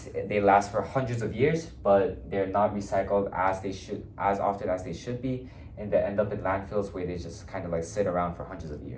they last for hundreds of years, but they're not recycled as often as they should be, and they end up in landfills where they just kind of sit around for hundreds of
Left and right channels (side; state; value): both; identical; correlation 1.00